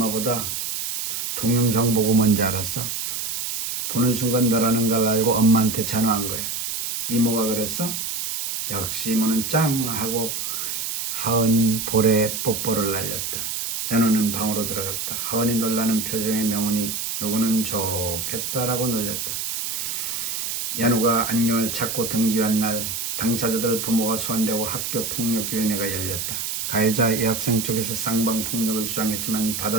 동영상 보고 뭔지 알았어? 보는 순간 너라는 걸 알고 엄마한테 전화한 거야. 이모가 그랬어? 역시 이모는 짱 하고 하은 볼에 뽀뽀를 날렸다. 연우는 방으로 들어갔다. 하은이 놀라는 표정의 명훈이 누구는 좋겠다라고 놀렸다. 연우가 안경을 찾고 등교한 날 당사자들 부모가 소환되고 학교폭력위원회가 열렸다. 가해자 여학생 쪽에서 쌍방폭력을 주장했지만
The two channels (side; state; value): right; noise; hiss, 3 dB below the sound